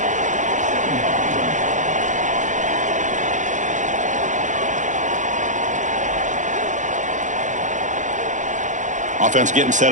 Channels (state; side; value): late; left; 0.36 ms